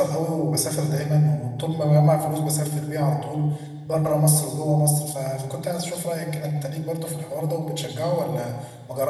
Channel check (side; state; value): both; identical; correlation 1.00